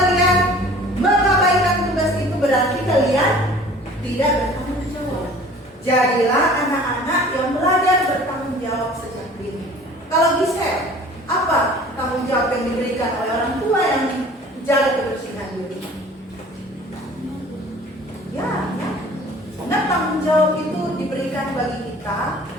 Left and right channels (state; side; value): normal; both; correlation 0.47